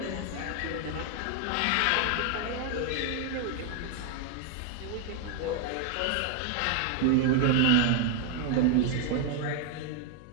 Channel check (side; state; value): both; different; correlation 0.01